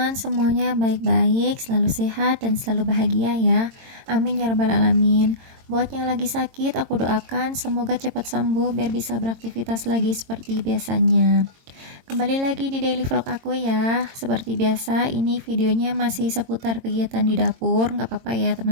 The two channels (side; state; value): left; late; 22 ms